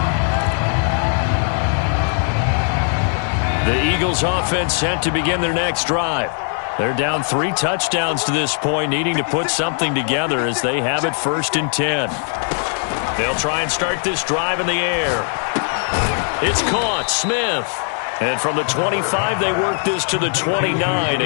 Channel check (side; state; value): right; silent; 56 dB below the other